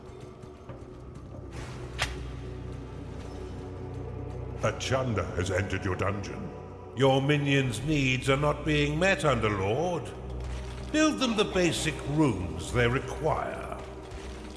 A Chanda has entered your dungeon. Your minions' needs are not being met, Underlord. Build them the basic rooms they require.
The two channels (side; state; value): both; identical; correlation 1.00